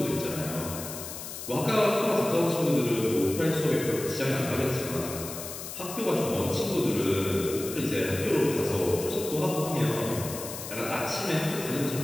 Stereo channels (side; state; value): left; noise; hiss, 9 dB below the sound